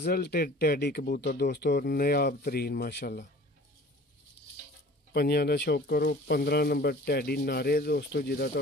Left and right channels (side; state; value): both; normal; correlation 0.46